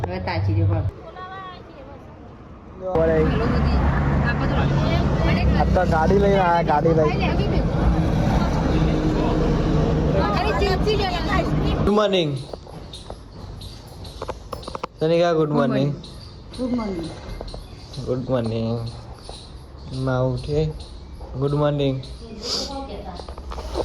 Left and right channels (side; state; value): both; identical; correlation 1.00